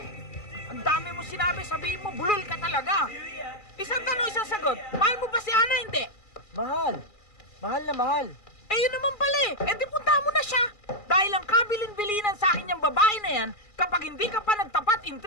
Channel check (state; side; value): late; right; 2.4 ms